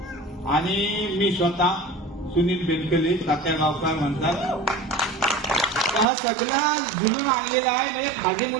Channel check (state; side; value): drops out; left; at 6.1 s